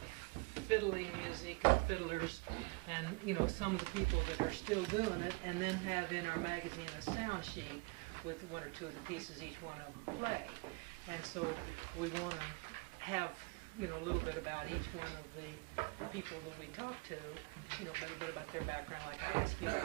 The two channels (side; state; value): left; quieter; 28.3 dB